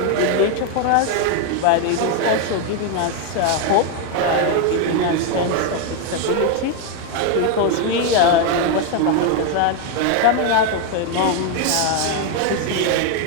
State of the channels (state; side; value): different; both; correlation 0.01